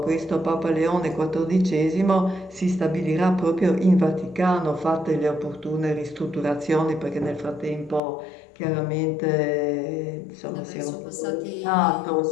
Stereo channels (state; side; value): drops out; right; at 8.0 s